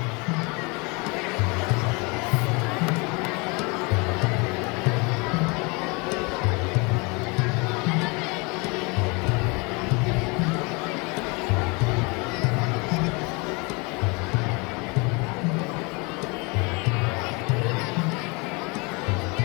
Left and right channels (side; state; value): right; quieter; 29.0 dB